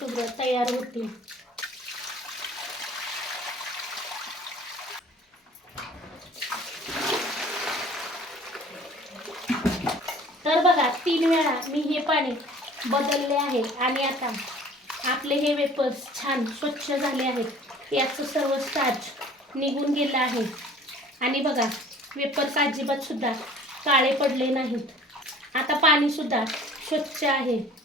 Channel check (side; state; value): both; normal; correlation 0.50